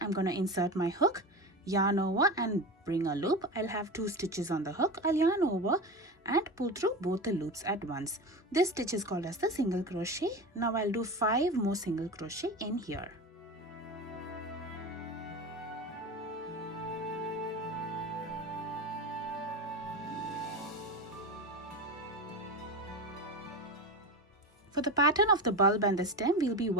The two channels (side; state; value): both; normal; correlation 0.25